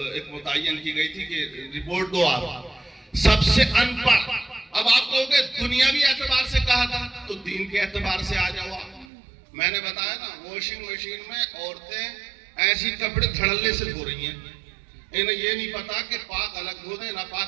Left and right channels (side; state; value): left; drops out; at 9.1 s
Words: ایک متعین کی گئی تھی کہ رپورٹ دو آپ. سب سے ان پڑھ. اب آپ کہو گے دنیاوی اعتبار سے کہا تھا, تو دین کے اعتبار سے آ جاؤ. میں نے بتایا نا, واشنگ مشین میں عورتیں ایسی کپڑے دھڑلے سے دھو رہی ہیں. انہیں یہ نہیں پتا کہ پاک الگ دھو دیں,